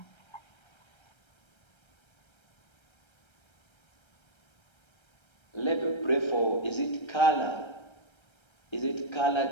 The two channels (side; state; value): right; late; 1.3 ms